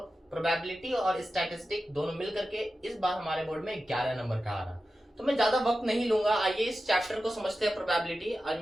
प्रोबेबिलिटी और स्टैटिस्टिक दोनों मिल करके इस बार हमारे बोर्ड में 11 नंबर का आ रहा। तो मैं ज्यादा वक्त नहीं लूंगा, आइए इस चैप्टर को समझते हैं प्रोबेबिलिटी। और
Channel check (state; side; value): normal; both; correlation 0.93